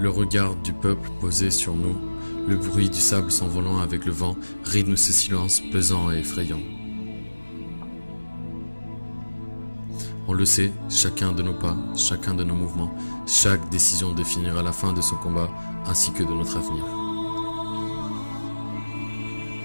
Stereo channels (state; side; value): inverted; both; correlation -1.00